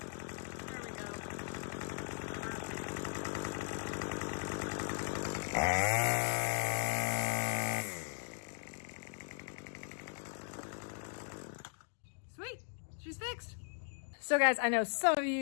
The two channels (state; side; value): silent; right; digital silence